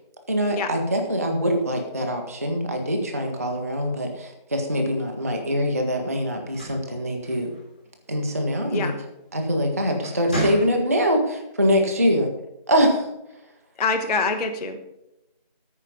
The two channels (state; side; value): inverted; both; correlation -0.56